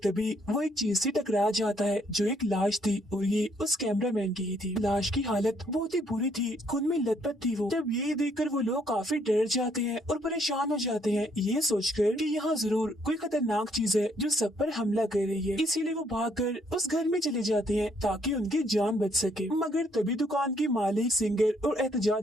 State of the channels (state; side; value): normal; both; correlation 0.69